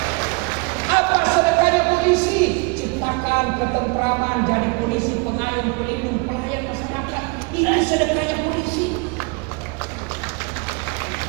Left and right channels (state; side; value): quieter; left; 30.5 dB